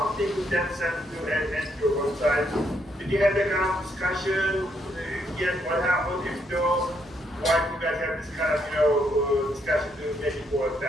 in that sense to enter your website. Did you have that kind of discussion? Yes, what happened? If so, why do you guys have this kind of discussion to make it more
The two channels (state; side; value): normal; both; correlation 0.75